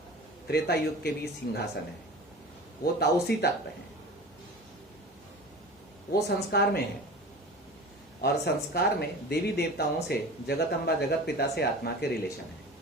त्रेता युग के भी सिंहासन है, वो ताउसी तत्व है, वो संस्कार में है। और संस्कार में देवी देवताओं से, जगत अम्बा जगत पिता से आत्मा के रिलेशन है।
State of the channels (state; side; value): normal; both; correlation 0.36